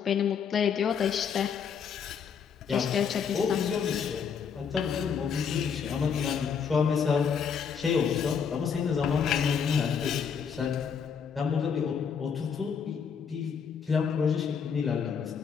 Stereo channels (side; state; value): right; quieter; 6.8 dB